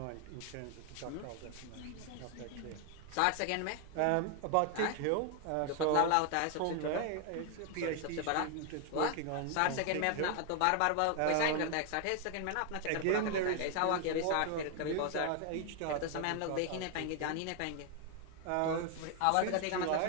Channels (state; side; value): different; both; correlation 0.00